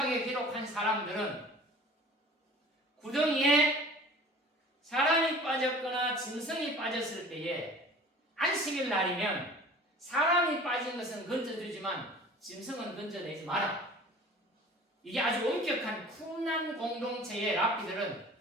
기록한 사람들은 구덩이에 사람이 빠졌거나 짐승이 빠졌을 때에 안식일 날이면 사람이 빠진 것은 건져주지만 짐승은 건져내지 마라. 이게 아주 엄격한 쿰난 공동체의 랍비들은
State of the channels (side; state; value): both; normal; correlation 0.45